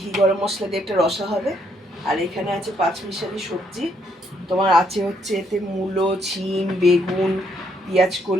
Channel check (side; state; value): both; normal; correlation 0.72